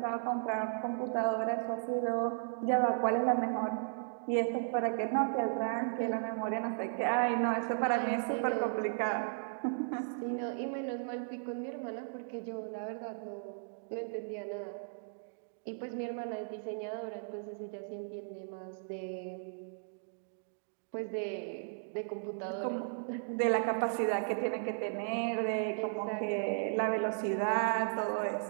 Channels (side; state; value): left; silent; digital silence